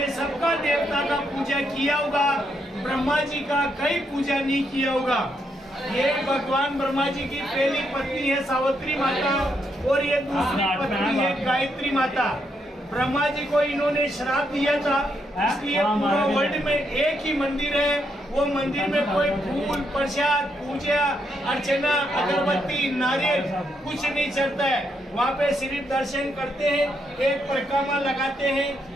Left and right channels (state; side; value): normal; both; correlation 0.78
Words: सबका देवता का पूजा किया होगा, ब्रह्मा जी का कहीं पूजा नहीं किया होगा। ये भगवान ब्रह्मा जी की पहली पत्नी है सावित्री माता और ये दूसरी पत्नी है गायत्री माता। ब्रह्मा जी को इन्होंने श्राप दिया था, इसलिए पूरा वर्ल्ड में एक ही मंदिर है। वो मंदिर में कोई फूल, प्रसाद, पूजा अर्चना, अगरबत्ती, नारियल कुछ नहीं चलता है। वहाँ पे सिर्फ दर्शन करते हैं, एक परिक्रमा लगाते